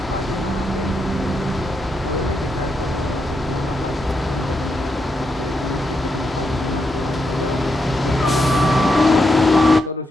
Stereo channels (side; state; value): both; normal; correlation 0.82